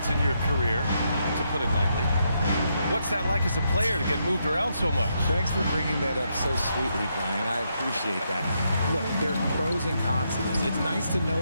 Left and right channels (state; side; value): inverted; both; correlation -0.79